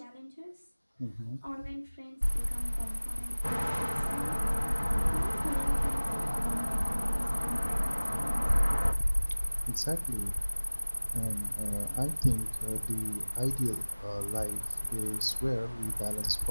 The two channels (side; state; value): both; inverted; correlation -1.00